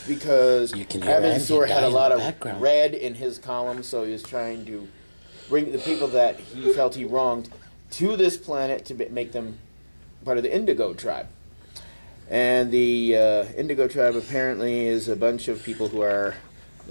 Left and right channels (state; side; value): inverted; both; correlation -1.00